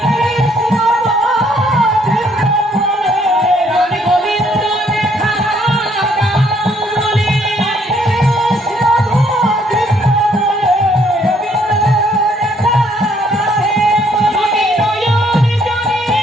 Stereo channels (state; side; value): normal; both; correlation 0.67